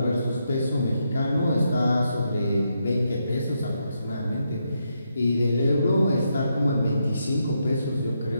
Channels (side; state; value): both; inverted; correlation -0.81